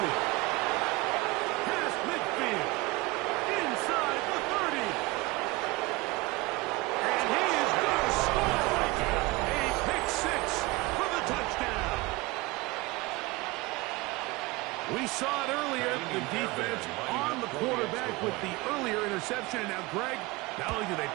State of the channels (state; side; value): quieter; left; 22.5 dB